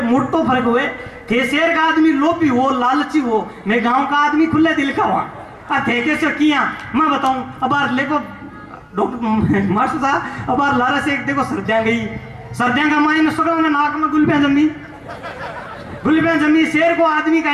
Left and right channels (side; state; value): both; identical; correlation 1.00